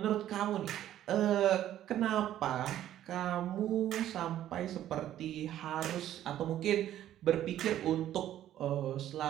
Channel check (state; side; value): quieter; left; 12.2 dB